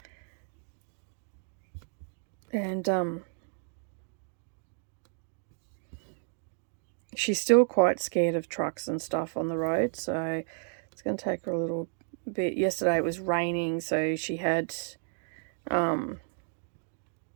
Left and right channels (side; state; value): left; silent; digital silence